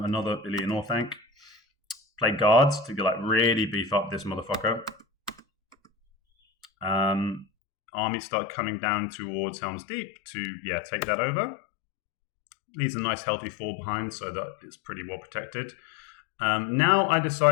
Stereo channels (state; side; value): drops out; right; at 7.5 s